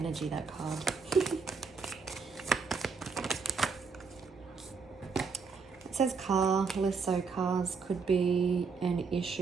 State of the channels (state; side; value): quieter; left; 5.1 dB